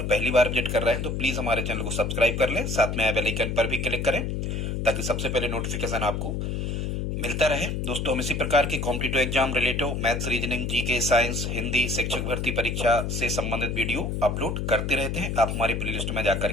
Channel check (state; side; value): noise; left; hum, 2 dB below the sound